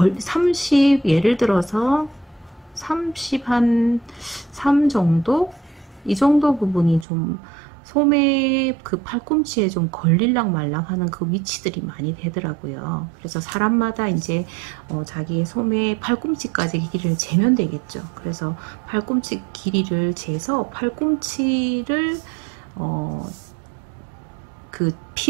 30, 예를 들어서 30 한 3 정도? 이 정도 부분이 좀 소매 그 팔꿈치에 좀 걸릴랑 말랑 하는 그 위치들이 많이 되더라고요. 그래서 사람마다 이제 자기 소매 팔꿈치까지 길이를 재면 되겠죠. 그래서 팔꿈치 길이를 재서 팔꿈치를 그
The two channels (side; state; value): left; drops out; at 7.1 s